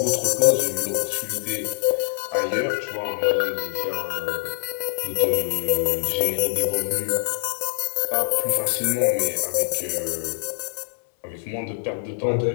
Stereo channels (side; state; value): right; silent; 63 dB below the other